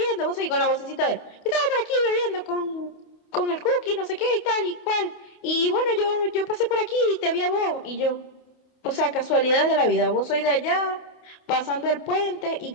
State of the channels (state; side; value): late; right; 28 ms